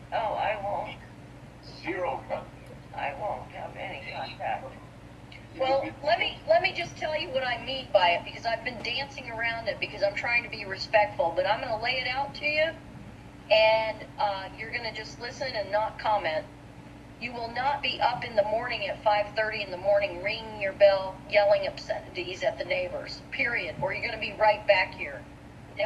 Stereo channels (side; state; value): both; identical; correlation 1.00